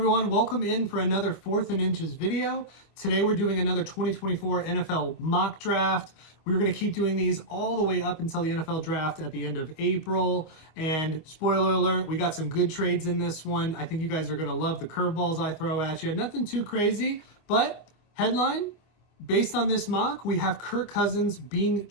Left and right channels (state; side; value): late; right; 25 ms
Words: welcome in for another 4th and Inches video. Today we're doing another 2024 NFL mock draft. We're going to keep doing these all the way up until the NFL draft at the end of April. And spoiler alert, we got some good trades in this one. I think you guys are going to love the curveballs I throw at you. Nothing too crazy, but headline, based on this mock, we have Kirk Cousins being